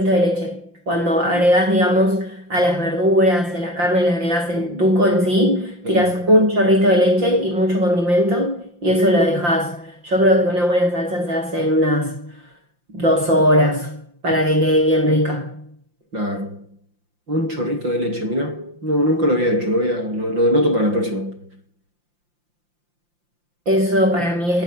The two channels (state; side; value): late; left; 5.7 ms